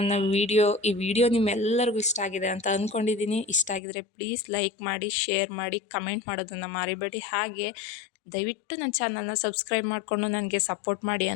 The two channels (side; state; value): right; drops out; at 3.8 s